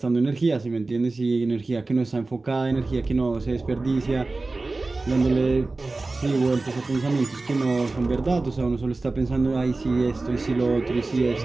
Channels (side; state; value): left; quieter; 3.4 dB